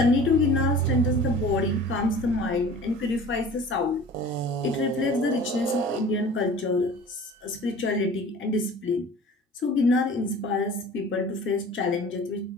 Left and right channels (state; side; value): normal; both; correlation 0.43